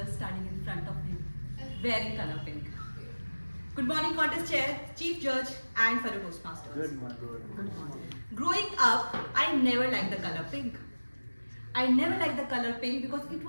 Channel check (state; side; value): inverted; both; correlation -1.00